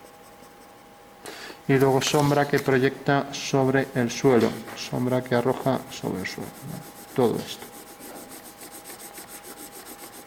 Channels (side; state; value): both; identical; correlation 1.00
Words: y luego sombra que proyecta sobre el suelo, sombra que arroja sobre el suelo, ¿vale? Todo esto.